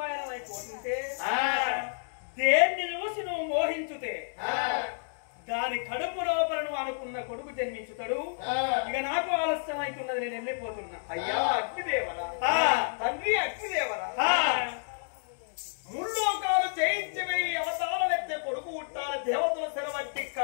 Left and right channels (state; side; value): silent; right; digital silence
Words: పయనమైపోతుంటే దేన్ని చూసి నువ్వు మోహించుతే దాని కడుపు లోపల నువ్వు అనుకున్న కొడుకు జన్మించుతాడు. ఇక నాకు ఆలస్యం అవుతున్నది, నేను వెళ్ళిపోతున్నా. అయ్యా అగ్నిదేవరా, తండ్రి అగ్నిదేవరా, ముల్లోకాలు జయించవే అవతారం ఎత్తే కొడుకు పుట్టాల దేవతల సెలవట్టి